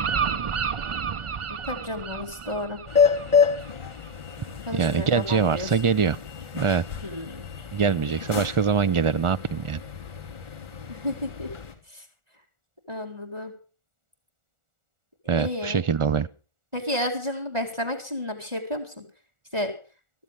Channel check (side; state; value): left; late; 1.4 ms